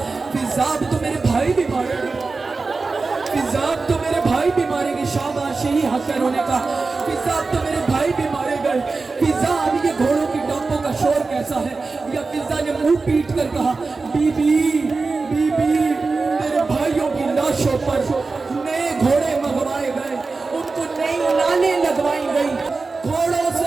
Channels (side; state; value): left; quieter; 4.0 dB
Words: فضا اب تو میرے بھائی بھی مارے گے، فضا اب تو میرے بھائی بھی مارے گے. شاباش، یہی حق ہے رونے کا. فضا اب تو میرے بھائی بھی مارے گئے. فضا اب یہ گھوڑوں کی ٹاپوں کا شور کیسا ہے؟ یا فضا نے منہ پیٹ کر کہا بی بی بی بی میرے بھائیوں کی لاشوں پر نئے گھوڑے منگوائے گئے، ان کو نئی لالیں لگوائی گئی، گھوڑوں